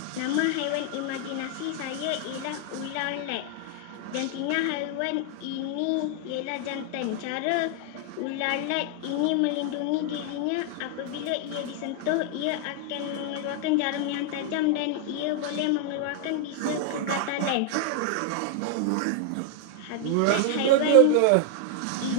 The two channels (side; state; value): both; different; correlation 0.00